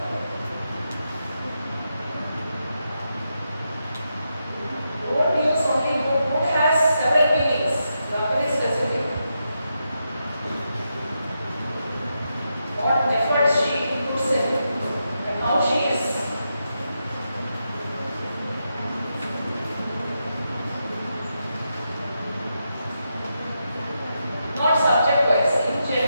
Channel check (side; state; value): both; inverted; correlation -0.85